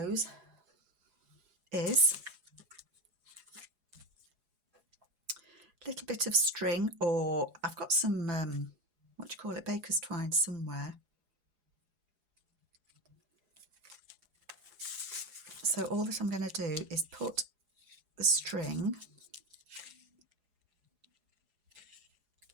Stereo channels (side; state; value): left; late; 4.8 ms